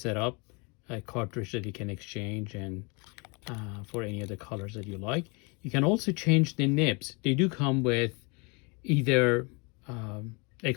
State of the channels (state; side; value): quieter; right; 30.9 dB